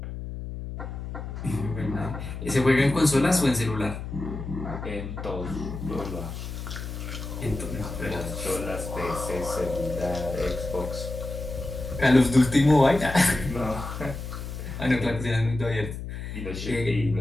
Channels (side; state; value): left; noise; hum, 7 dB below the sound